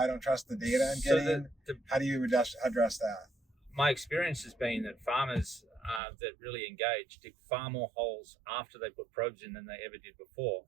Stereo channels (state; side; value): drops out; left; at 6.0 s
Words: don't trust the data I'm getting. How do you address that? My experience has been that farmers that really engage dig far more holes after they put probes in than they ever did before.